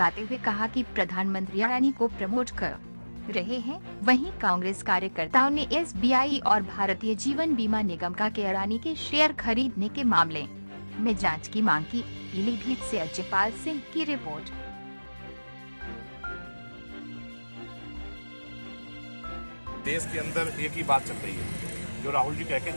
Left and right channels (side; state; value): both; inverted; correlation -1.00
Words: हुए कहा कि प्रधानमंत्री अडानी को प्रमोट कर रहे हैं। वहीं कांग्रेस कार्यकर्ताओं ने SBI और भारतीय जीवन बीमा निगम का अडानी के शेयर खरीदने के मामले में जांच की मांग की। पीलीभीत से अजयपाल सिंह की रिपोर्ट। देश के अंदर एक ही बात चल रही है, जो राहुल जी कह के